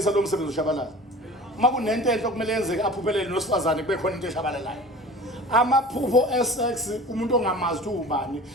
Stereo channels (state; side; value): normal; both; correlation 0.40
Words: lo msebenzi ushabalala uma kunento enhle okumele yenzeke aphuphelele nosifazane kube khona into eshabalalayo amaphupho esex umuntu ongamazi ukuthi ubani